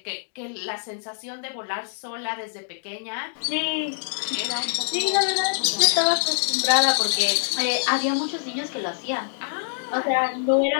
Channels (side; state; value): right; silent; digital silence